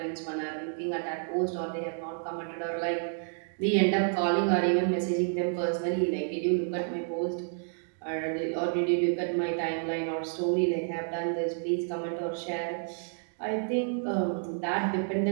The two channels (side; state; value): left; silent; digital silence